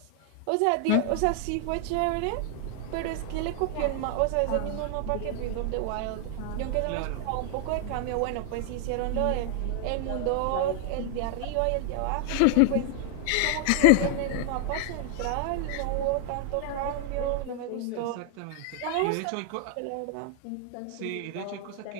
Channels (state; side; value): different; both; correlation 0.00